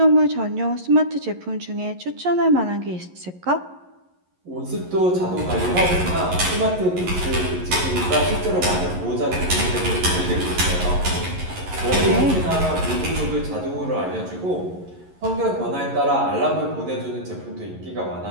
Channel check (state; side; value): late; left; 11 ms